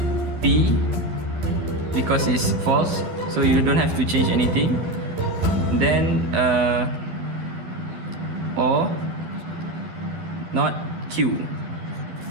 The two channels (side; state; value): left; late; 11 ms